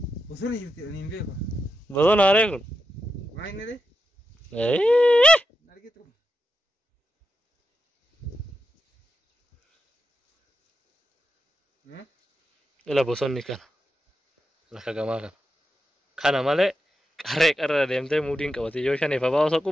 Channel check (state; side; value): normal; both; correlation 0.87